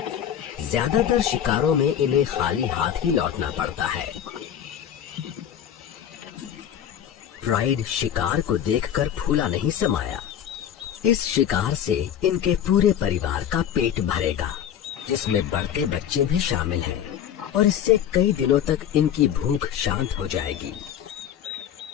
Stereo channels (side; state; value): right; quieter; 9.7 dB